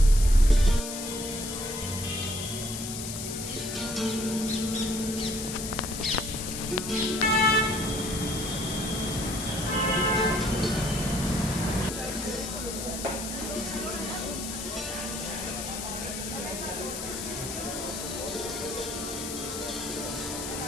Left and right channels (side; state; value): left; noise; hiss, 6 dB below the sound